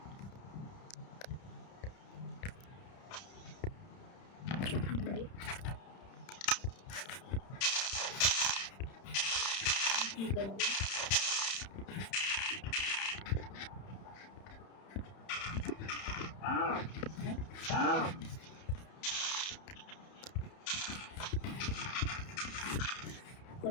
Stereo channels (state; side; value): late; right; 31 ms